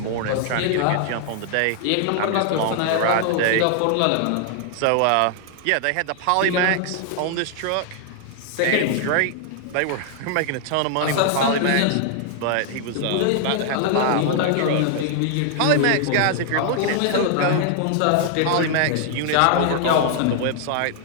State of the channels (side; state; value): both; different; correlation 0.00